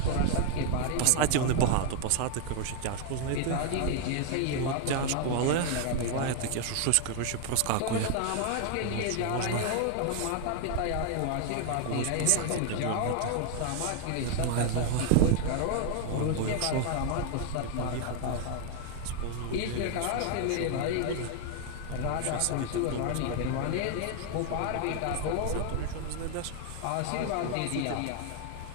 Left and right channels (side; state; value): both; different; correlation 0.00